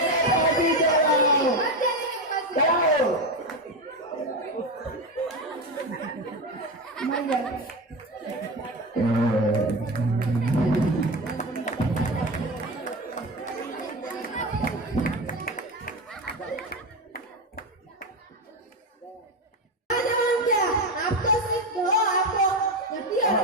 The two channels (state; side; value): normal; both; correlation 0.17